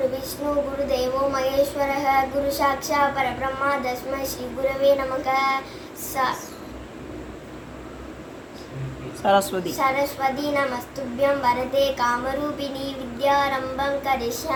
விஷ்ணு குரு தேவோ மகேஸ்வரः குரு சாக்ஷாத் பரபிரம்மா தஸ்மை ஸ்ரீ குரவே நமக. சரஸ்வதி சரஸ்வதி நமஸ்துभ्यं வரதே காமரூபிணி வித்யாரம்பம்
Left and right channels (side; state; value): both; identical; correlation 1.00